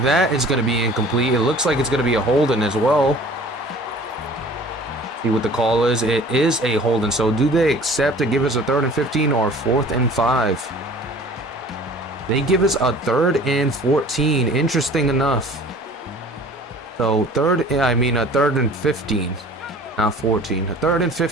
That is gonna be incomplete. It looks like it's gonna be a holding as well. See what the call is. It is a holding. So do they accept to give us a 3rd and 15 or 4th and 5? They give us a 3rd and 14. Interesting enough. So a 3rd and 15, not 14. A 3rd and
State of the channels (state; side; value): normal; both; correlation 0.46